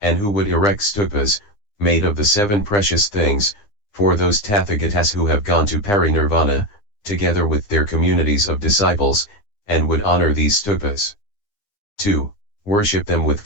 And who would erect stupas, made of the 7 precious things, for those Tathagatas who have gone to parinirvana, together with their communities of disciples, and would honor these stupas. 2. Worship them with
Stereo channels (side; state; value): right; late; 9.9 ms